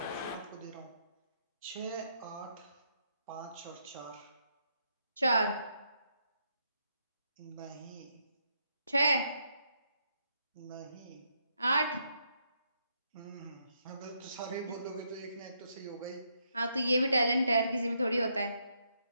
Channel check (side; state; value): both; inverted; correlation -0.77